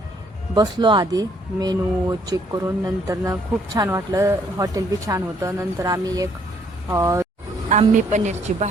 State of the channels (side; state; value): both; normal; correlation 0.66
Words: बसलो आधी मेनू चेक करून. नंतर खूप छान वाटलं, हॉटेल बी छान होतं. नंतर आम्ही आंबी पनीरची